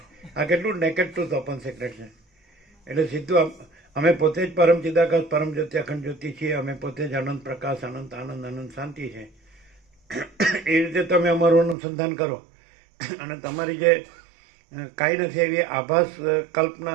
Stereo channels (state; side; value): drops out; left; at 11.8 s